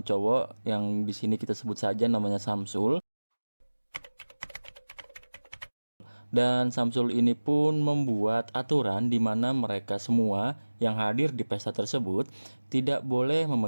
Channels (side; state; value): both; inverted; correlation -1.00